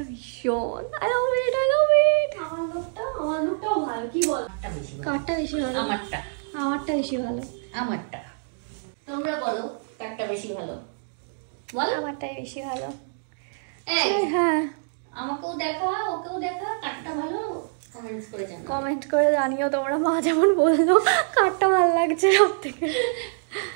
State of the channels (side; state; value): left; silent; digital silence